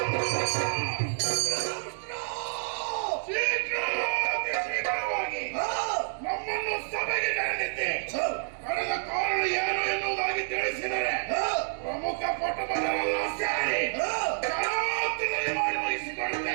ಶೀಘ್ರವಾಗಿ ನಮ್ಮನ್ನು ಸಭೆಗೆ ಕರೆದಿದ್ದೆ ಕರೆದ ಕಾರಣ ಏನು ಎನ್ನುವುದಾಗಿ ತಿಳಿಸಿದರೆ ಪ್ರಮುಖ ಪಟುಪದರೆಲ್ಲ ಸೇರಿ ಕರಾವತ್ತಿನಲ್ಲಿ ಮಾಡಿ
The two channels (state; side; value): silent; left; digital silence